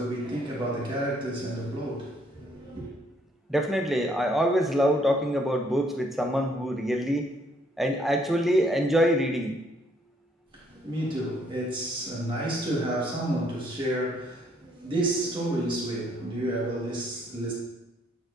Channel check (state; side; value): normal; both; correlation 0.67